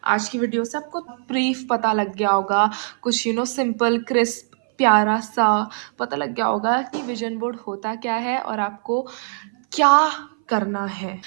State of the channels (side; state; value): left; silent; 59 dB below the other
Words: आज की वीडियो से आपको ब्रीफ पता लग गया होगा, कुछ सिंपल क्रिस्प प्यारा सा पता लग गया होगा कि विजन बोर्ड होता क्या है और आपको क्या करना है.